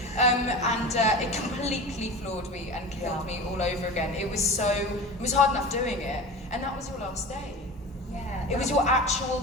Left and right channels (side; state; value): both; normal; correlation 0.32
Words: And it completely floored me and killed me all over again. It was hard enough doing it, and that was your last day. Yeah. It was your actual